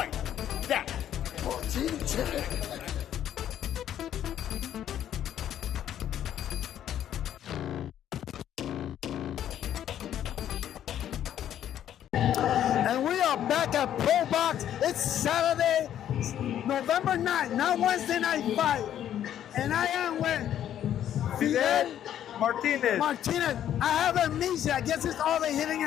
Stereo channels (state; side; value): quieter; right; 10.7 dB